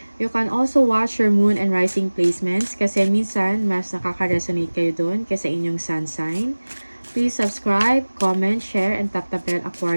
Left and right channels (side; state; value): both; inverted; correlation -1.00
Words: You can also watch your moon and rising placements kasi minsan mas nakaka-resonate kayo doon kasi inyong sun sign. Please subscribe, comment, share, and tap the bell,